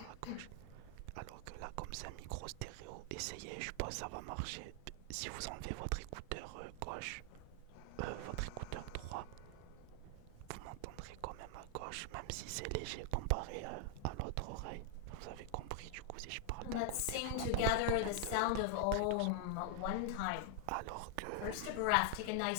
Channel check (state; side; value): different; both; correlation 0.00